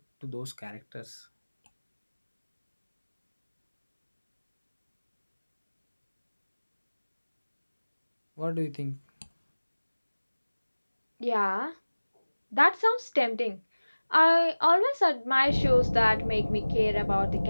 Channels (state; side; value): inverted; both; correlation -1.00